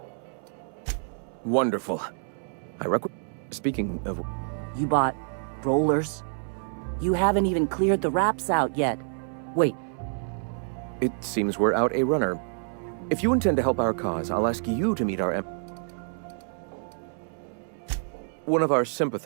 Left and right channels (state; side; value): silent; left; 60 dB below the other